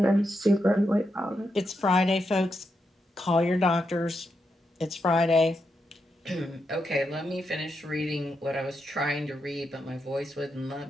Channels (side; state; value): both; normal; correlation 0.84